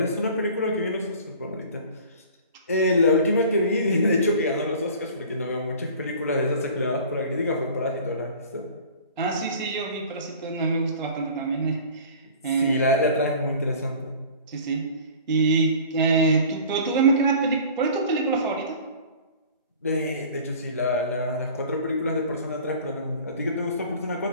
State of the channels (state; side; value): inverted; both; correlation -0.44